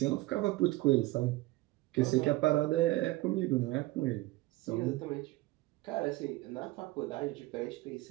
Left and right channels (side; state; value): left; quieter; 19.5 dB